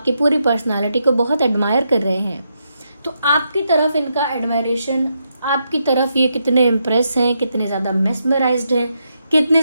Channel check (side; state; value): both; inverted; correlation -0.81